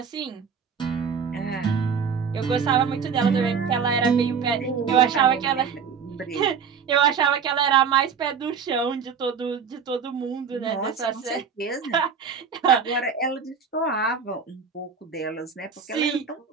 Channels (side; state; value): left; quieter; 6.4 dB